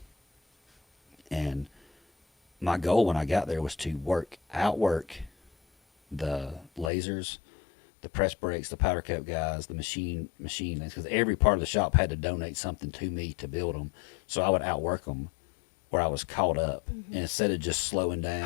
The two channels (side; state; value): right; drops out; at 6.9 s